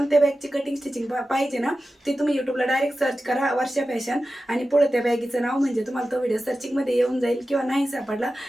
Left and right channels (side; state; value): both; normal; correlation 0.93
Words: बॅगची कटिंग स्टिचिंग पाहिजे ना, ते तुम्ही यूट्यूबला डायरेक्ट सर्च करा वर्षा फॅशन, आणि पुढे त्या बॅगीचं नाव म्हणजे तुम्हाला तो व्हिडिओ सर्चिंगमध्ये येऊन जाईल। किंवा नाही सापडला